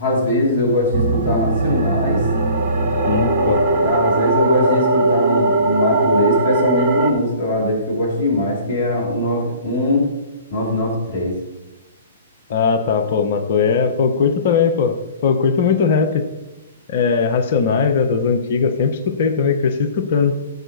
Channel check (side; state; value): both; inverted; correlation -0.46